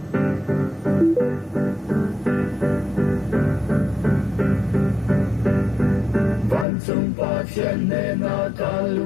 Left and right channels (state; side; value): drops out; right; at 6.7 s